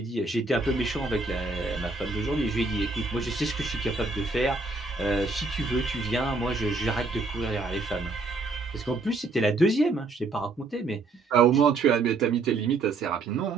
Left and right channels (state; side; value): quieter; left; 3.6 dB